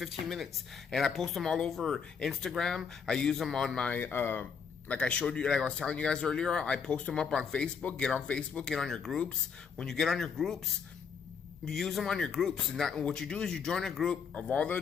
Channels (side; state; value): right; quieter; 6.3 dB